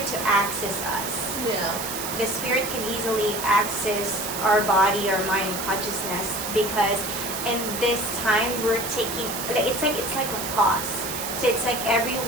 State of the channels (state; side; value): noise; right; hiss, 5 dB below the sound